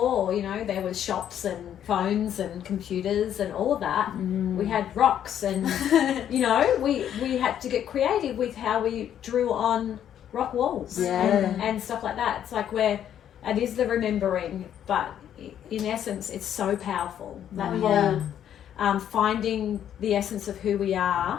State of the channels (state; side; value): quieter; right; 10.0 dB